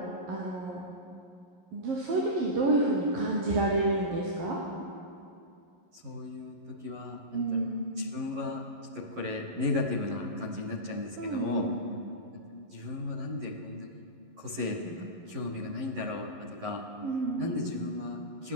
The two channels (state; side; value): late; left; 11 ms